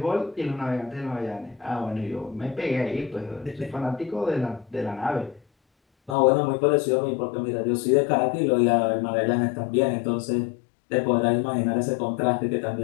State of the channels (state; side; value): drops out; right; at 6.2 s